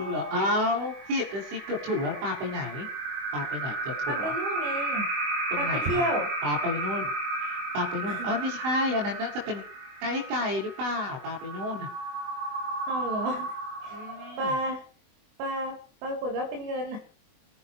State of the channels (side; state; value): left; late; 23 ms